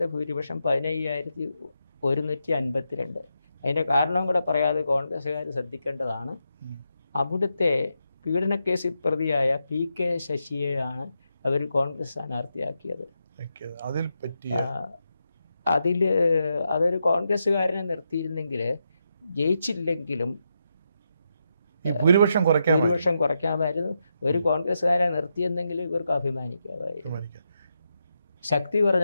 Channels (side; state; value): both; inverted; correlation -0.85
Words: ഭൂരിപക്ഷം 15,152. അതിൻ്റെ കാരണം കൂടെ പറയാതെ കോൺഗ്രസ്സുകാർ ശ്രദ്ധിക്കേണ്ടതാണ്. അവിടുത്തെ പീഡനക്കേസിൽ പ്രതിയായ PK ശശിയെയാണ് അവർ കോൺഗ്രസ് സ്ഥാനാർത്ഥിയാക്കിയത്. അതൊരു കോൺഗ്രസ്സുകാരനെ നിർത്തിയിരുന്നെങ്കിൽ ജയിച്ചില്ലെങ്കിലും ഭൂരിപക്ഷം കുറയ്ക്കാമായിരുന്നു. ഒരു കോൺഗ്രസ്സുകാരെ നിർത്തിയെന്നെങ്കിൽ ഇവർക്ക് അഭിമാനിക്കാമായിരുന്നു. ശക്തി